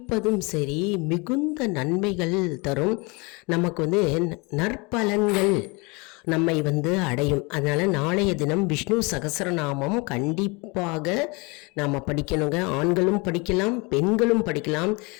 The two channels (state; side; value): quieter; right; 28.2 dB